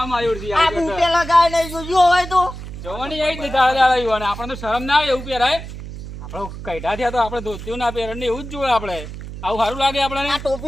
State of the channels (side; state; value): right; noise; hum, 10 dB below the sound